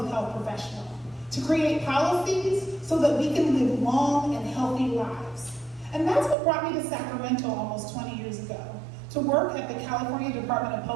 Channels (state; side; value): drops out; left; at 6.4 s